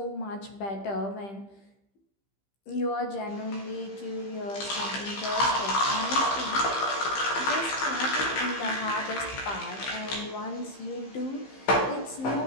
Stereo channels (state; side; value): late; right; 15 ms